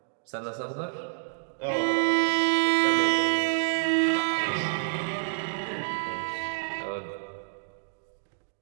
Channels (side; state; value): left; silent; digital silence